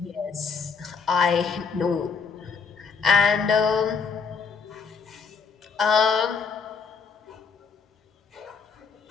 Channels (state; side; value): quieter; right; 5.5 dB